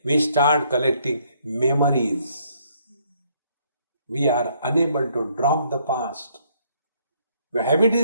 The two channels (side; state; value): both; inverted; correlation -0.68